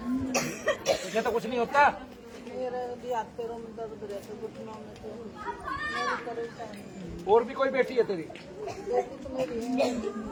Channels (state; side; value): identical; both; correlation 1.00